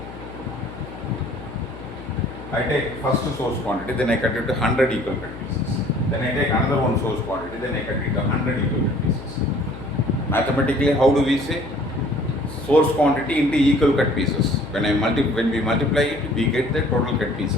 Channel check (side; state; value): left; noise; hum, 14 dB below the sound